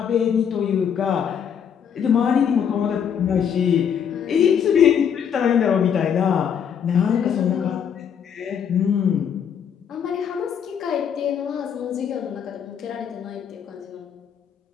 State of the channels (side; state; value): right; quieter; 7.9 dB